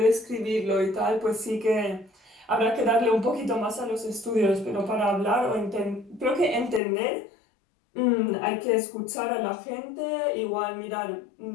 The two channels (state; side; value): drops out; right; at 6.8 s